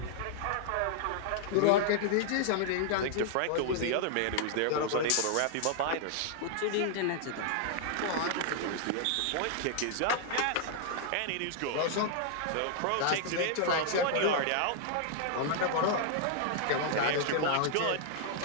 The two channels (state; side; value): different; both; correlation -0.01